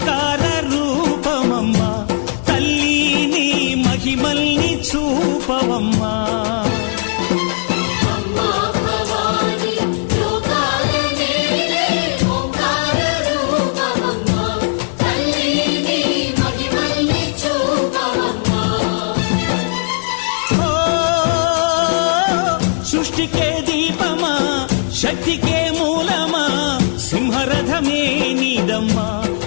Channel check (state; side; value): silent; right; 63 dB below the other